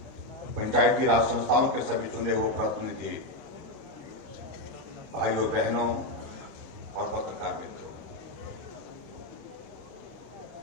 पंचायती राज संस्थाओं के सभी चुने हुए प्रतिनिधि, भाइयों बहनों और पत्रकार मित्रों,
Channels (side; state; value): right; late; 1.2 ms